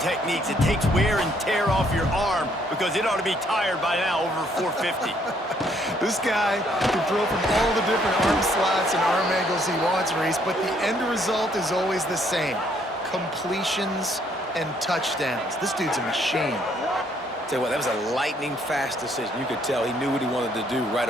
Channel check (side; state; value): both; normal; correlation 0.67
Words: It takes wear and tear off your arm because it ought to be tired by now over 450. This guy can throw from all the different arm slots and arm angles he wants, Reese, but the end result is always the same. Completions and touchdowns. This dude's a machine. Tell you what, that was a lightning-fast decision. You could tell he knew what he wanted to do right